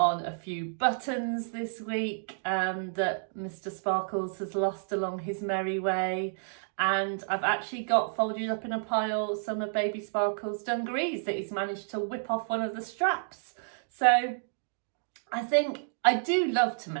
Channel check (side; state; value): left; silent; digital silence